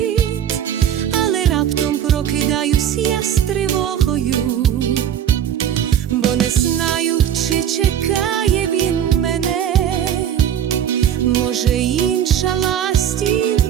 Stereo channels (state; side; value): quieter; left; 9.7 dB